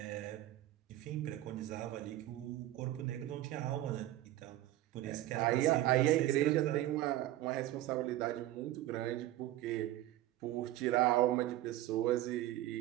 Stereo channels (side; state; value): left; quieter; 14.9 dB